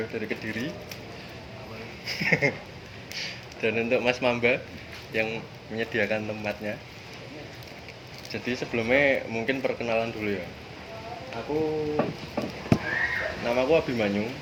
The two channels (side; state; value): both; identical; correlation 1.00